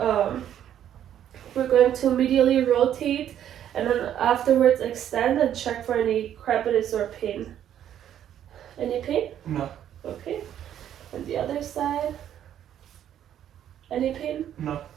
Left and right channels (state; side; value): quieter; left; 10.4 dB